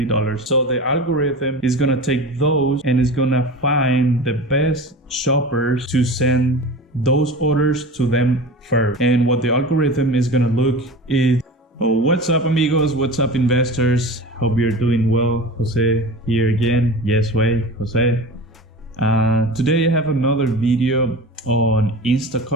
So the algorithm is gonna take those and is gonna find the best shoppers to send those orders to them first. And what the algorithm is gonna look is, oh, what's up amigos, what's up investors? Hope you're doing well. Jose here again. Yes way, Jose. Today I have another video on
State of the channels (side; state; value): both; normal; correlation 0.33